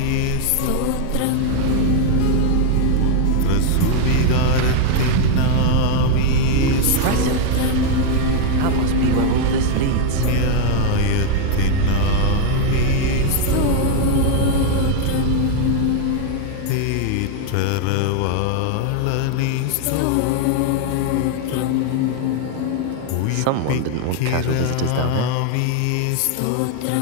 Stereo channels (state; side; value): different; both; correlation 0.01